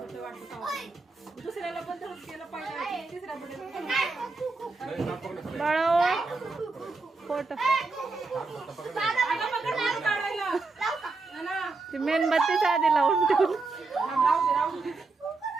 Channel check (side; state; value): left; quieter; 3.8 dB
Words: वाटतं. दुसऱ्याला पण तसंच केलं पाहिजे. तिसऱ्या बड्याला बाळा फोटो काढायला ती मेणबत्तीच आधी लावून ठेवली. राहू दे